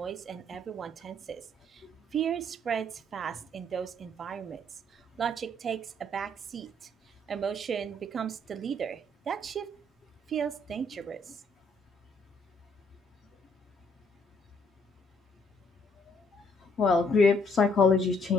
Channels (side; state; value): both; normal; correlation 0.67